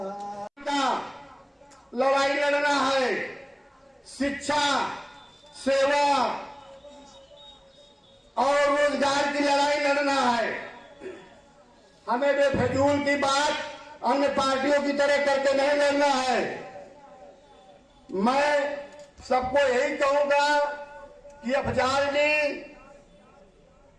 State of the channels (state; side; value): identical; both; correlation 1.00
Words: लड़ाई लड़ना है, शिक्षा, सेवा और रोजगार की लड़ाई लड़ना है। हमें बेफजूल की बात अन्य पार्टियों की तरह करके नहीं लड़ना है। मैं सबको यही कहूंगा कि अफजाल जी